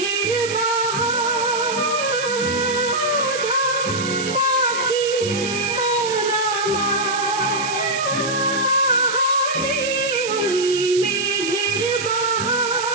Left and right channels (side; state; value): right; noise; hiss, 8 dB below the sound